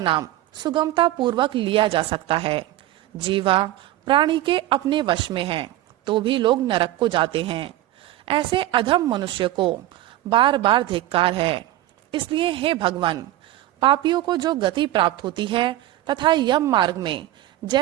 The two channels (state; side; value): quieter; left; 14.9 dB